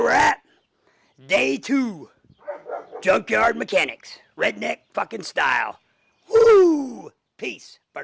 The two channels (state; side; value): identical; both; correlation 1.00